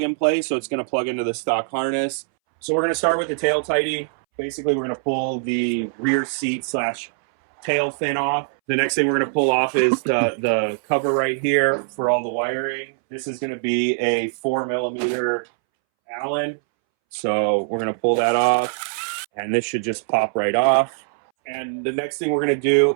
and play, so it's going to plug into the stock harness. So we're going to start with the tail tidy. Basically, we're going to pull the rear seat / tail fin off. The next thing we're going to pull off is the cover right here for all the wiring. This is going to be a 4mm Allen. So we're going to pull that off, and this should just pop right off. And the next thing we're going to do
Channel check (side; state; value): left; silent; 63 dB below the other